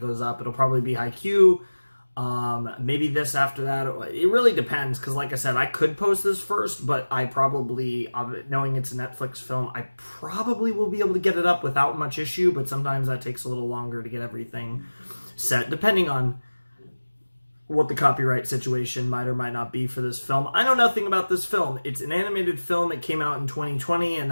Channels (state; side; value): inverted; both; correlation -1.00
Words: up. It'll probably be Haikyuu. Maybe this after that. It really depends, because like I said, I could post this first, but I probably, knowing it's a Netflix film, I probably will be able to get it up without much issue, but sometimes that takes a little longer to get everything set, depending on what the copyright situation might or might not be for this film. I know nothing about this film. It's an animated film. It came out in 2020, and